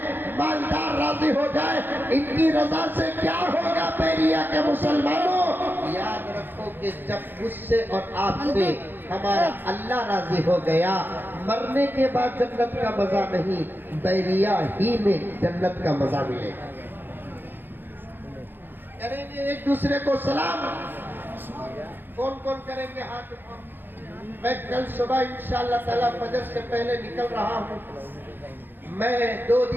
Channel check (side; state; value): left; late; 0.096 ms